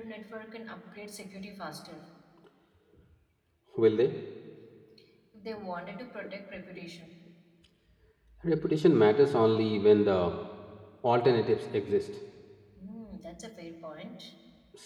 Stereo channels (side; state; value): both; identical; correlation 1.00